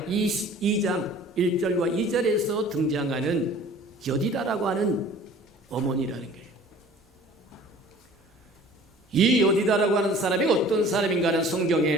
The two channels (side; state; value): both; normal; correlation 0.48